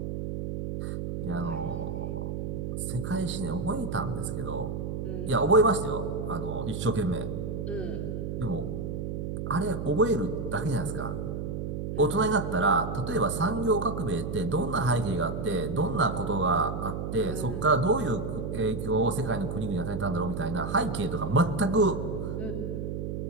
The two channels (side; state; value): right; noise; hum, 4 dB below the sound